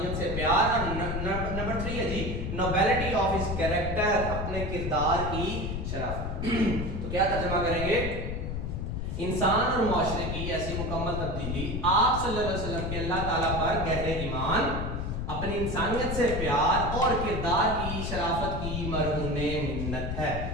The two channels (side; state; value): left; noise; rumble, 3 dB below the sound